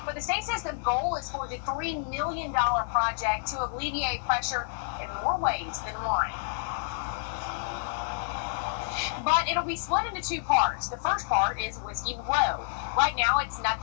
But the state says the goal is for the $3 million project to alleviate pressure in more ways than one. But it'll be split into two parts. The first part is Whiskey Road. Right now, it's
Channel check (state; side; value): silent; right; digital silence